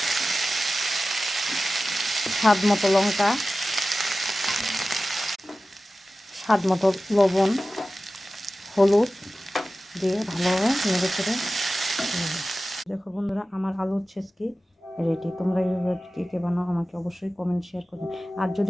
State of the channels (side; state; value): both; normal; correlation 0.95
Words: স্বাদ মতো লঙ্কা, স্বাদ মতো লবণ, হলুদ দিয়ে ভালোভাবে নেড়ে চেড়ে। দেখো বন্ধুরা, আমার আলুর ছেচকি রেডি। তোমরা এইভাবে কে কে বানাও আমাকে অবশ্যই কমেন্ট শেয়ার করবে। আর